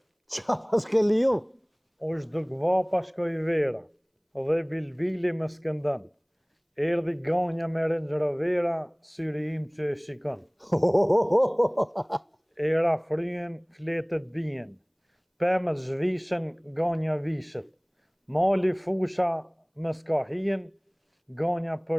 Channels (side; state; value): both; identical; correlation 1.00